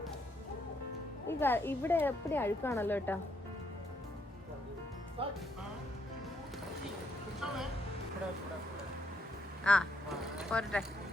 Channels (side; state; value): both; normal; correlation 0.74